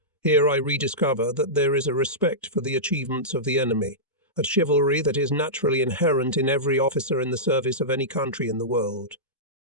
Here I rediscover that there is a respect for the achievements of the enemy, a chivalry that is naturally inherent in every officer in the service of any country in the world.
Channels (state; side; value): normal; both; correlation -0.15